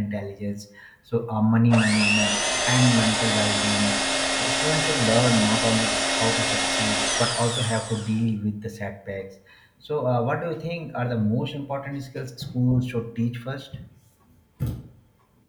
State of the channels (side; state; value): both; identical; correlation 1.00